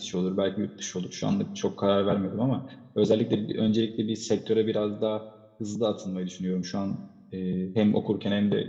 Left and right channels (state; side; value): identical; both; correlation 1.00